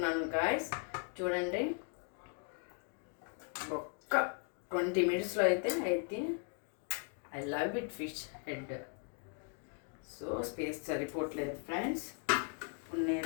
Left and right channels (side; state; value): right; quieter; 39.3 dB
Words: గాయస్. చూడండి, ఒక్క 20 minutesలో అయితే I love it fish head. So space సరిపోవట్లేదు ఫ్రెండ్స్. ఇప్పుడు